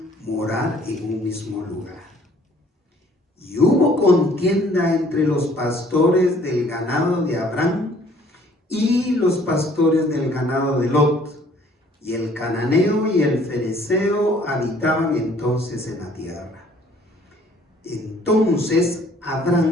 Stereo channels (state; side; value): normal; both; correlation 0.58